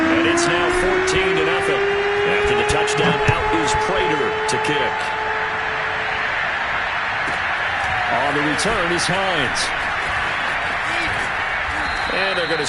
and it's now 14-0. After the touchdown, out is Prater to kick. On the return is Hines. And they're going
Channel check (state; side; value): identical; both; correlation 1.00